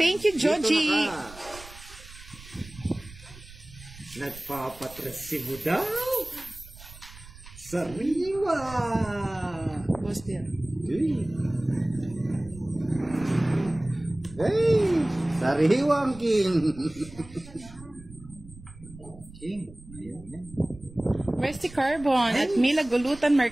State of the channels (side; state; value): right; noise; rumble, 19 dB below the sound